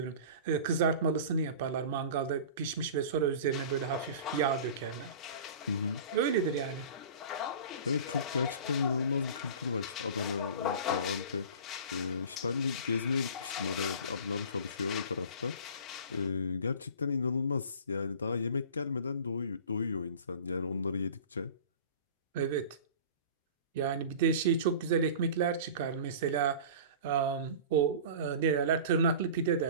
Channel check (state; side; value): inverted; both; correlation -0.38